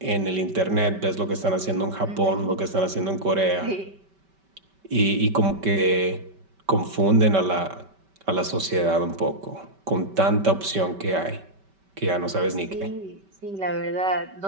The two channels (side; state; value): left; late; 5.2 ms